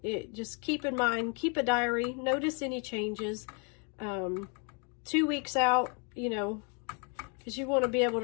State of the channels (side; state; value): right; quieter; 37.1 dB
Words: just keep in mind, keep a diary, notice any changes. 2 weeks out, you know, because you want to be able